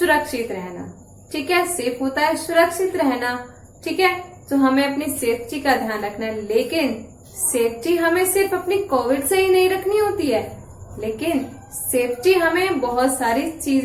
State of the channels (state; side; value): identical; both; correlation 1.00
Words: रहना, ठीक है। सेफ होता है सुरक्षित रहना, ठीक है। तो हमें अपनी सेफ्टी का ध्यान रखना है, लेकिन सेफ्टी हमें सिर्फ अपनी कोविड से ही नहीं रखनी होती है, लेकिन सेफ्टी हमें बहुत सारी